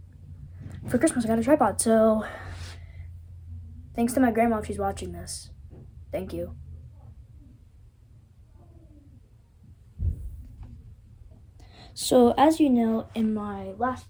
For Christmas, I got a tripod, so thanks to my grandma if she's watching this. Thank you. So, as you know, in my last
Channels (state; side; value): identical; both; correlation 1.00